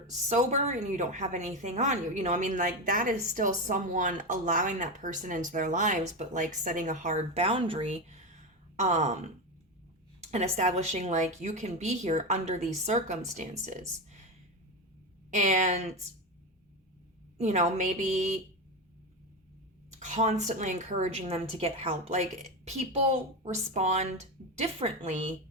sober and you don't have anything on you. Like that is still someone allowing that person into their lives, but like setting a hard boundary, and establishing like you can be here under these circumstances. And, maybe constantly encouraging them to get help. Like people respond differently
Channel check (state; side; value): normal; both; correlation 0.16